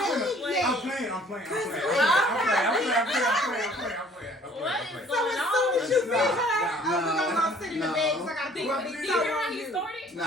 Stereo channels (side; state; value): both; normal; correlation 0.55